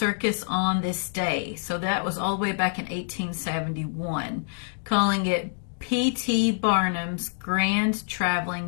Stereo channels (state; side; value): silent; right; digital silence